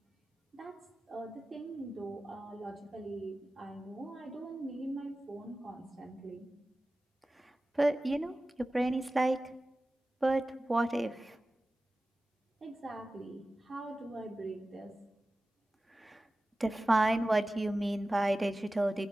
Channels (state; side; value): normal; both; correlation 0.95